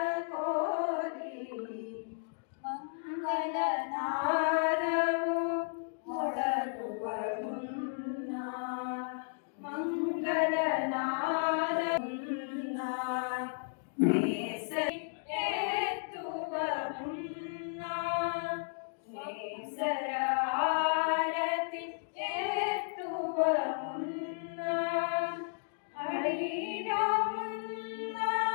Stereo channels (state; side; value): silent; right; digital silence